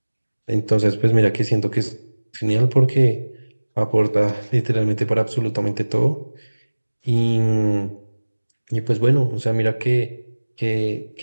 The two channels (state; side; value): inverted; both; correlation -1.00